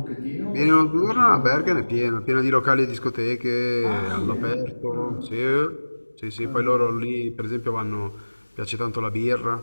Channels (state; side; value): inverted; both; correlation -1.00